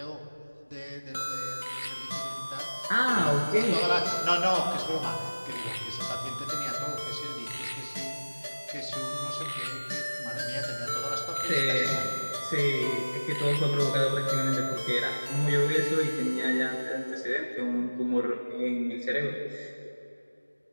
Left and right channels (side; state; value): both; inverted; correlation -1.00